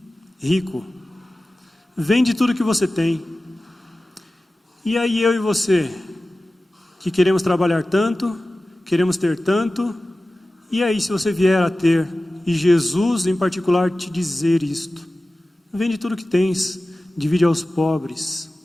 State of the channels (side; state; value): both; normal; correlation 0.96